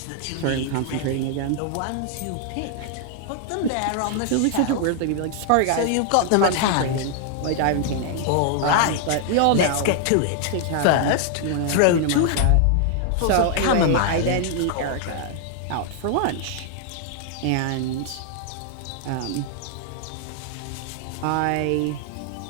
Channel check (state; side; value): different; both; correlation 0.00